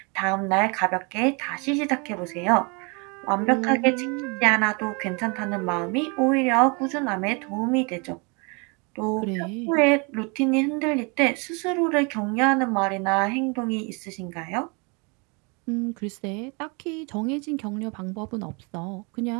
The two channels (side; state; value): left; quieter; 31.6 dB